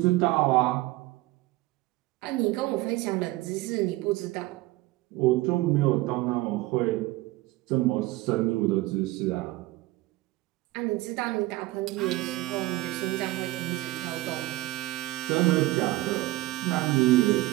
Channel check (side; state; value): left; quieter; 18.7 dB